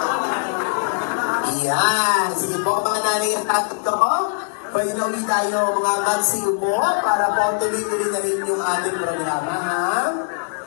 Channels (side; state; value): right; silent; digital silence